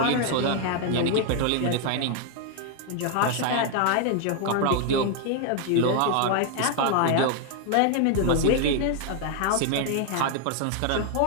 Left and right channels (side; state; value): both; different; correlation 0.00